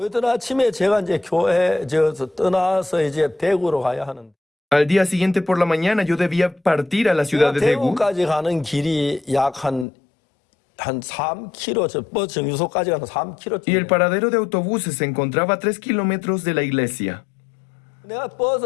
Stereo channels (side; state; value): right; drops out; at 9.9 s